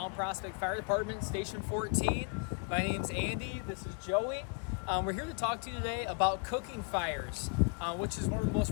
Prospect Fire Department, Station 14. My name's Andy, this is Joey. We're here to talk to you today about cooking fires, which is one of the most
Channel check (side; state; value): right; quieter; 34.4 dB